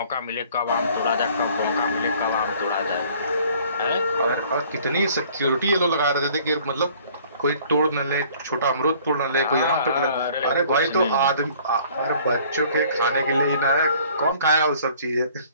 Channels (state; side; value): inverted; both; correlation -0.55